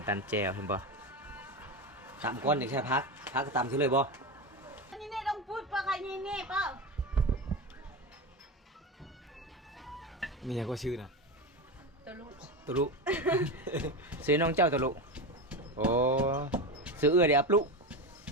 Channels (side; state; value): both; normal; correlation 0.19